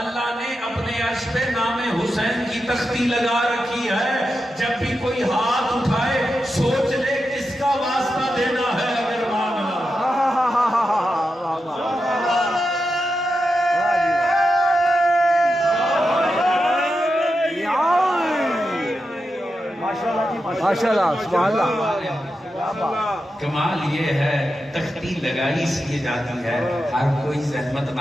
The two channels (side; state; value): both; normal; correlation 0.89